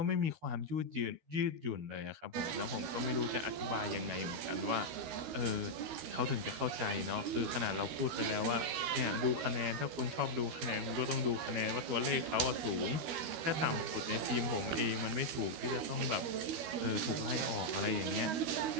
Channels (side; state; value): left; late; 13 ms